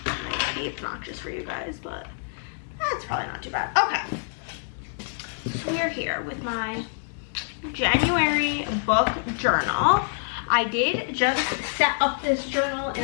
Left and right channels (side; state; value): right; silent; digital silence